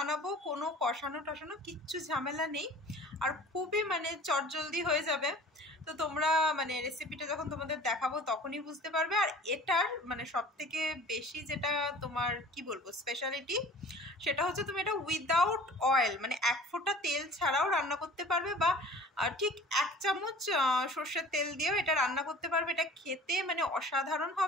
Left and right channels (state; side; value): normal; both; correlation 0.45